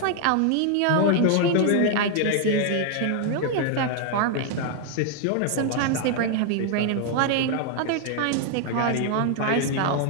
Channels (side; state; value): both; different; correlation 0.00